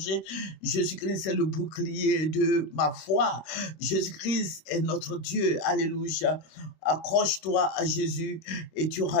Jésus-Christ est le bouclier de ma foi. Jésus-Christ est notre Dieu. Alléluia. Accroche-toi à Jésus et tu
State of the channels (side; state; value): right; late; 26 ms